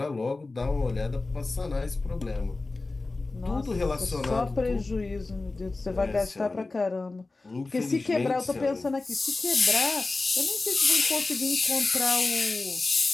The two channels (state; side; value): quieter; right; 3.4 dB